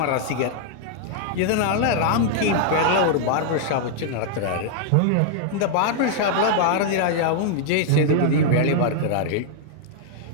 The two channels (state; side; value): different; both; correlation -0.01